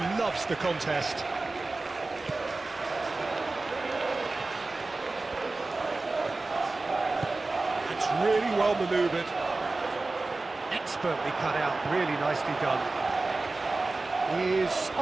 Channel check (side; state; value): left; quieter; 3.4 dB